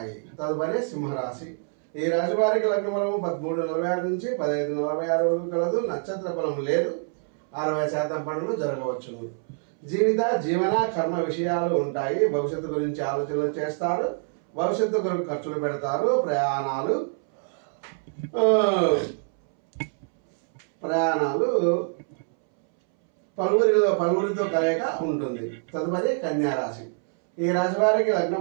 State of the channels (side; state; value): left; silent; 61 dB below the other